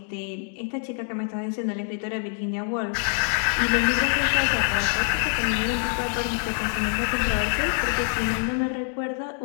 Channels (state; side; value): silent; right; 61 dB below the other